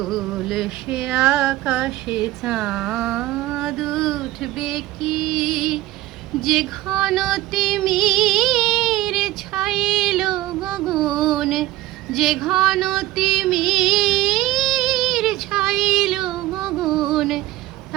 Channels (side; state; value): left; quieter; 16.7 dB